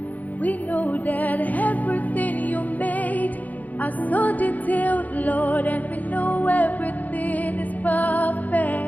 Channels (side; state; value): right; late; 0.079 ms